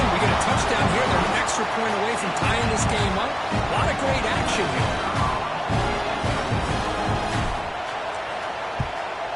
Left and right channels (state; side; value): identical; both; correlation 1.00